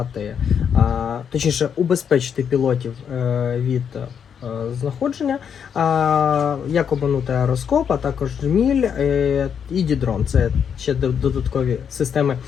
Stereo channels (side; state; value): right; quieter; 7.6 dB